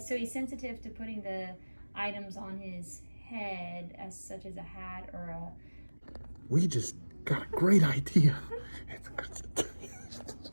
so he's sensitive to putting the items on his head, as such as a hat or a... We just got a great idea.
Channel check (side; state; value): both; inverted; correlation -1.00